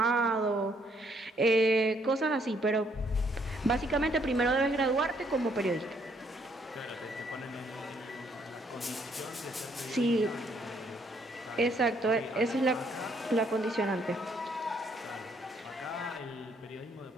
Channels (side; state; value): both; normal; correlation 0.69